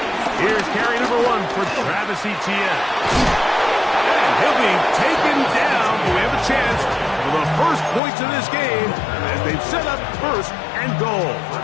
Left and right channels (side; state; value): right; drops out; at 8.0 s